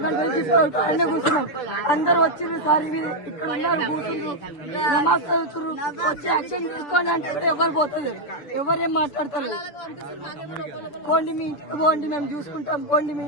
గంటల నుంచి అన్నీ కూర్చున్నాం. అందరు వచ్చిర్రు సార్. ఇక్కడ ఉన్నారు, కూర్చున్నారు, నమాజ్ చదువుతున్నారు. వచ్చి యాక్షన్ తీసుకోండి అంటే ఎవరు పోతుంది, ఎవరేం మాట్లాడతారు. పోండి మీ ఇంటికి పోండి మేము చూసుకుంటాం, పోండి మీ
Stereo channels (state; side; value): late; right; 6.8 ms